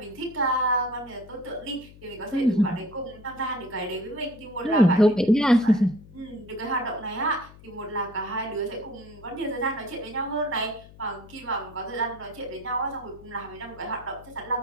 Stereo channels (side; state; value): left; noise; hum, 21 dB below the sound